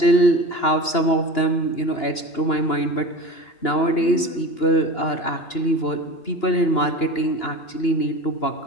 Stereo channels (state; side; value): late; right; 2.9 ms